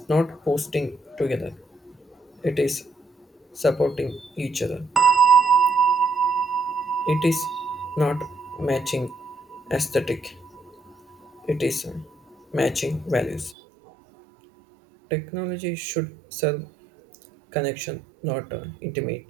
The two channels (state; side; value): drops out; left; at 13.6 s